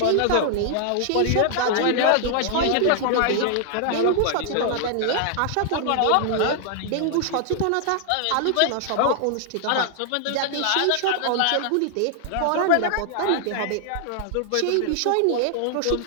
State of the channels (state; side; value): different; both; correlation 0.00